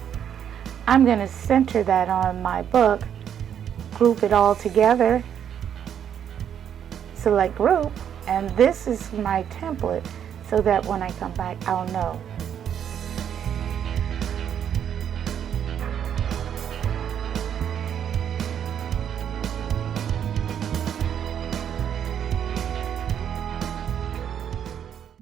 I'm going to center that on my book, group it all together, select group, and this is my template so that when I come back, I'll know.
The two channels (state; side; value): quieter; left; 9.0 dB